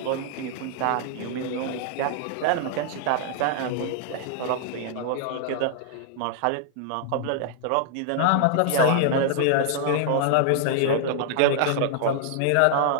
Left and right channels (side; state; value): both; different; correlation -0.01